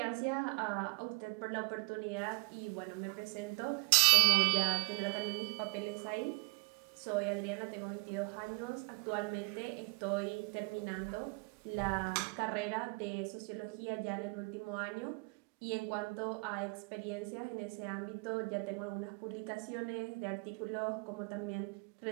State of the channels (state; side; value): quieter; left; 28.6 dB